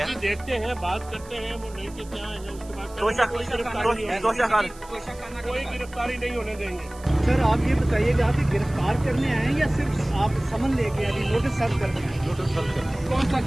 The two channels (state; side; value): noise; right; hiss, 22 dB below the sound